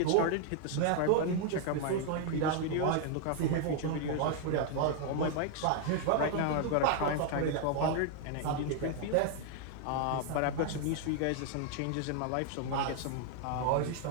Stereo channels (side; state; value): both; different; correlation 0.00